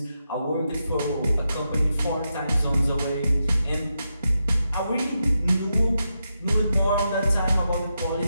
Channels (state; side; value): inverted; both; correlation -0.86